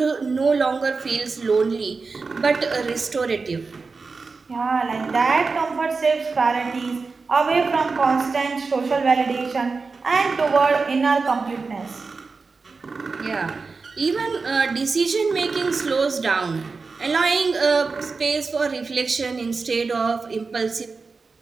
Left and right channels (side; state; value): left; quieter; 4.4 dB